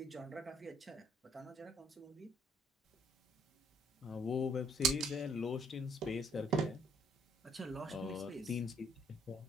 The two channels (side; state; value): both; normal; correlation 0.64